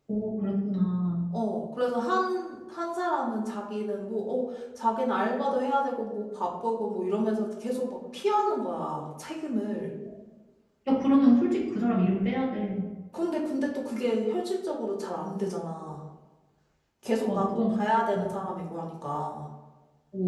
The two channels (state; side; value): identical; both; correlation 1.00